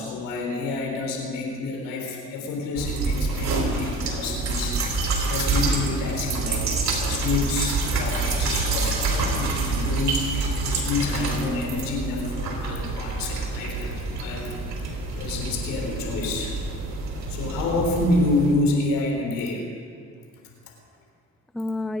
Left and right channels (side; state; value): both; normal; correlation 0.41